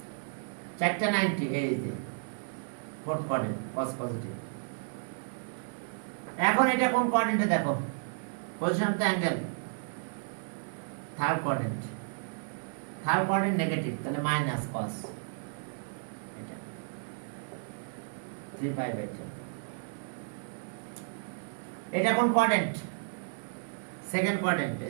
490, এই যে ফোর্থ কোয়াড্রেন্ট, cos পজিটিভ। এখন এটা কোন কোয়াড্রেন্টে দেখো? Position of the angle third quadrant negative, তাহলে মাইনাস cos এটা 3 pi by 10। এটা কোন কোয়াড্রেন্ট? সেকেন্ড কোয়াড্রেন্ট,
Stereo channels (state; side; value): silent; left; 56 dB below the other